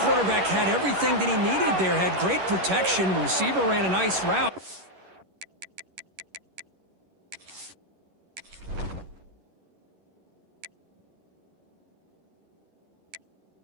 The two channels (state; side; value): late; left; 11 ms